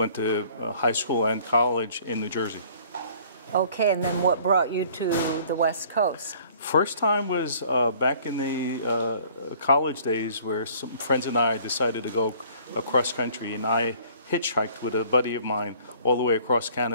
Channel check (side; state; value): both; inverted; correlation -0.55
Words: to high school and college in New Jersey. Okay, and then what brought you to the West Coast? First time was back in the college days, where some friends and I decided to go across country, and I hitchhiked with a buddy of mine all the way across